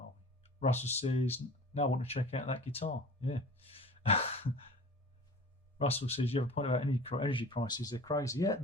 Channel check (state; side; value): normal; both; correlation 0.41